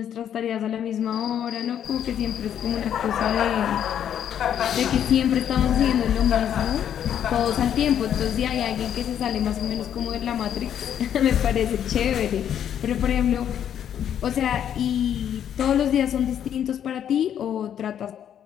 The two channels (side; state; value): right; quieter; 9.5 dB